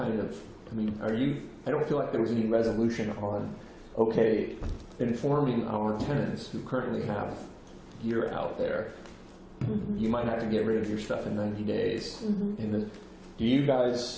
of, I don't feel like there was any resolution on, okay, informing our tenants who currently have gear out there, you might have to get rid of your stuff in 90 days. Do you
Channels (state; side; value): identical; both; correlation 1.00